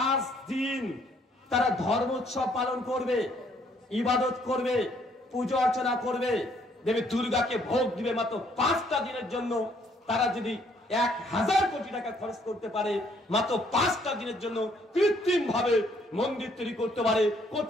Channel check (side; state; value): both; normal; correlation 0.66